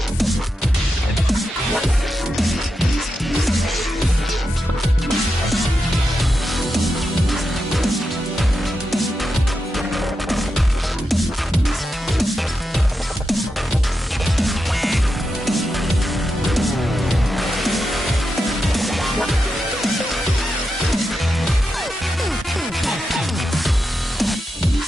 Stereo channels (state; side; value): normal; both; correlation 0.87